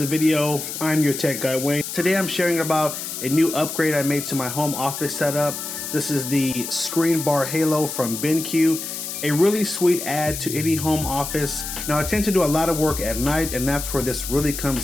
video. I'm your tech guy Wayne. Today I'm sharing about a new upgrade I made to my home office setup. This is the Screenbar Halo from Benq. A really sweet add to any home office. Now I tend to do a lot of work at night, and that's where this really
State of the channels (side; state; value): left; noise; hiss, 6 dB below the sound